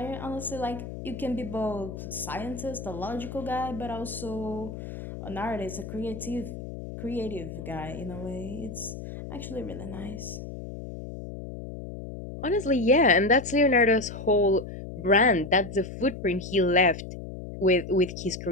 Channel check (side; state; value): left; noise; hum, 9 dB below the sound